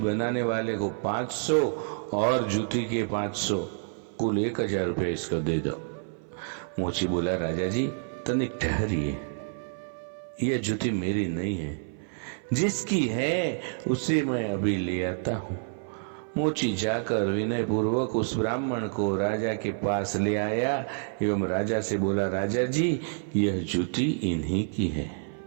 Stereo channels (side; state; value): left; silent; 56 dB below the other